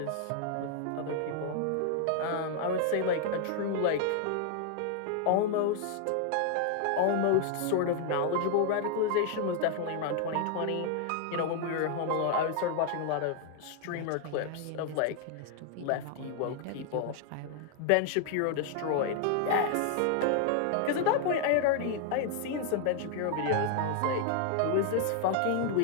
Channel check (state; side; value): different; both; correlation 0.00